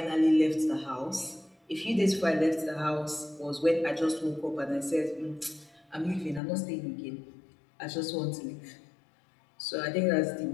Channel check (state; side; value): drops out; right; at 6.4 s